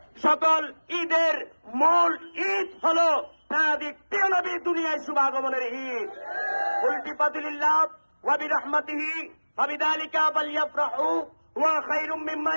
সকল ঈদের মূল ঈদ হল প্রাণাদিক প্রিয় নবী দুনিয়ায় শুভাগমনের ঈদ। উল্টি ফাদিলিল্লাহ ওয়া বিরহমাতিহি ফাবিযালিকা ফালইফরাহু ওয়া খায়রুম মিম্মা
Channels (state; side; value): inverted; both; correlation -1.00